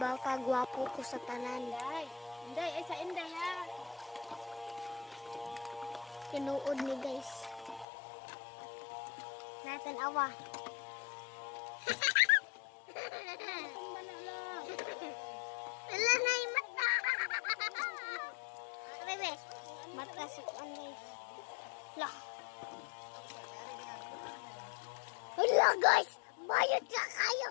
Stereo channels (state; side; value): drops out; right; at 7.9 s